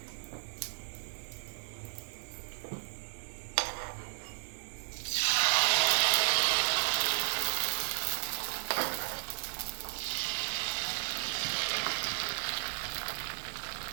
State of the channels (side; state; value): left; silent; digital silence